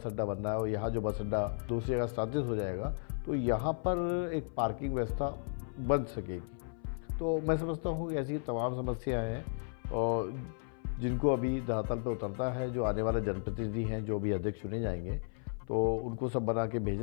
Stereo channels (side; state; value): right; silent; 55 dB below the other